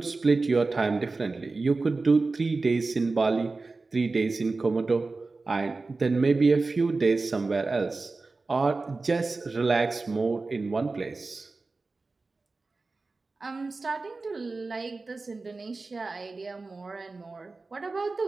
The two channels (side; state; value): left; quieter; 3.7 dB